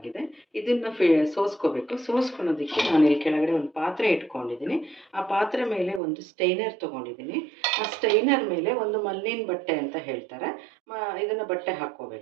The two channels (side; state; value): left; drops out; at 6.0 s